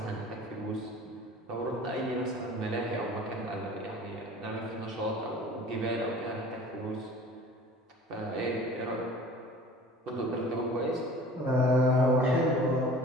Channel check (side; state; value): both; normal; correlation 0.44